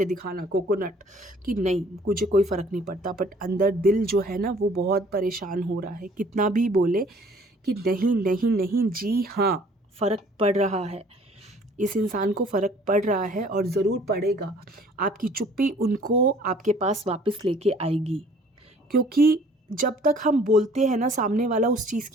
दिखाना, कोकोनट, कि नहीं मुझे कोई फ़र्क नहीं पड़ता, बट अंदर दिल जो है ना, वो बहुत परेशान हो रहा है। कितना भी बोले कि नहीं नहीं नहीं, जी हाँ, फ़र्क पड़ रहा है, इस इंसान को फ़र्क पड़ रहा है और ज़रूर पड़ेगा। आपकी चुप्पी उनको आपके पास वापस लेके आएगी, क्योंकि जब तक हम बोलते हैं ना, सामने वाला उस चीज़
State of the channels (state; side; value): normal; both; correlation 0.55